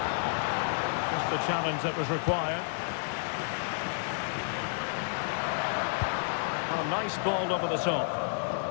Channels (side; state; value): right; silent; digital silence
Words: Just the challenge that was required. Oh, nice ball over the top.